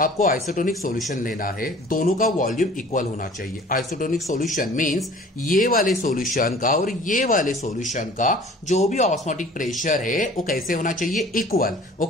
आइसोटोनिक सॉल्यूशन लेना है, दोनों का वॉल्यूम इक्वल होना चाहिए। आइसोटोनिक सॉल्यूशन मींस ये वाले सॉल्यूशन का और ये वाले सॉल्यूशन का जो भी ऑस्मोटिक प्रेशर है वो कैसे होना चाहिए, इक्वल।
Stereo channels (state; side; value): normal; both; correlation 0.48